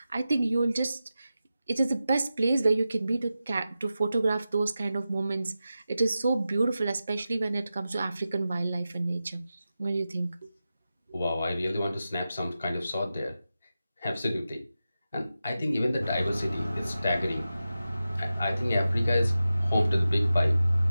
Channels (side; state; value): both; inverted; correlation -0.93